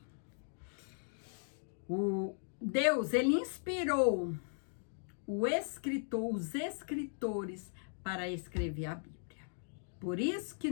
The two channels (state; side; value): silent; right; digital silence